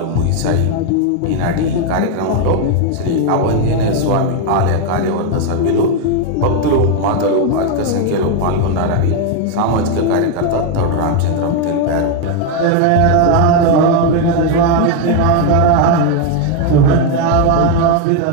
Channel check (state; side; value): different; both; correlation 0.01